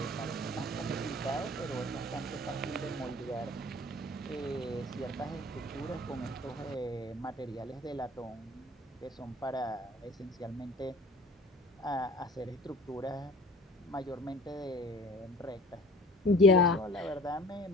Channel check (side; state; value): both; normal; correlation 0.46